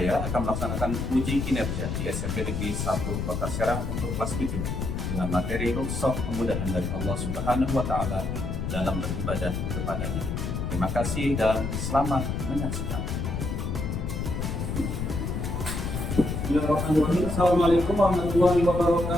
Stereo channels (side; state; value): left; noise; rumble, 3 dB below the sound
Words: akan melaksanakan uji kinerja di SMP Negeri 1 Kota Serang untuk kelas 7 dengan materi rukhsah kemudahan dari Allah Subhanahu wa Ta'ala dalam beribadah kepadanya. Terima kasih dan selamat menyaksikan. Bismillahirrahmanirrahim. Assalamualaikum warahmatullahi